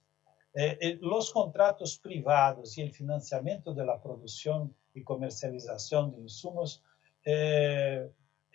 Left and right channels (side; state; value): right; quieter; 13.4 dB